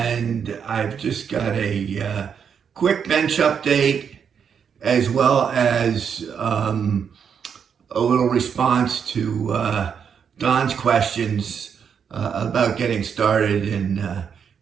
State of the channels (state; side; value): quieter; left; 7.2 dB